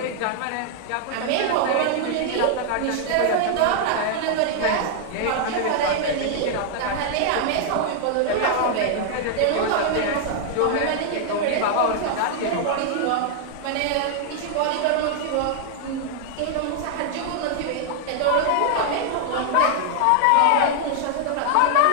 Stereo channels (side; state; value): both; different; correlation -0.01